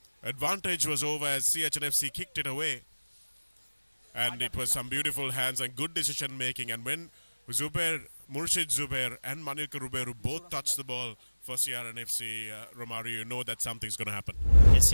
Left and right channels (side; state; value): both; inverted; correlation -1.00